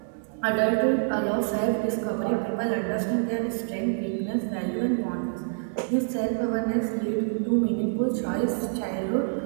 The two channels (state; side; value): silent; left; digital silence